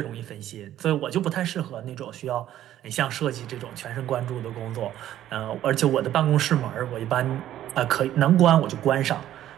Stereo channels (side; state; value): left; quieter; 12.4 dB